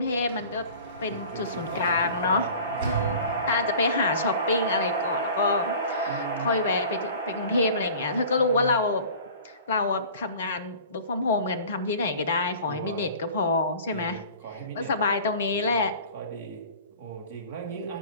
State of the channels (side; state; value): both; inverted; correlation -0.43